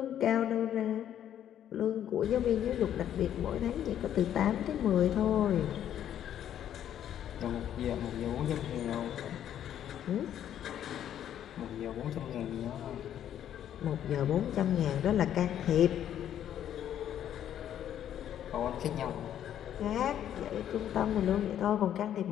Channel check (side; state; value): right; quieter; 10.5 dB